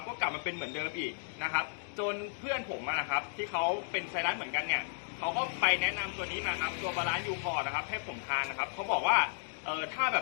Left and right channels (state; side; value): silent; right; digital silence